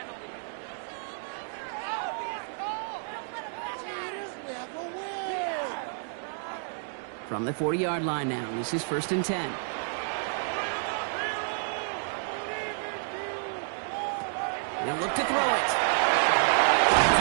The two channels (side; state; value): left; silent; digital silence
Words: From the 40-yard line now, this is first and 10. He'll look to throw it.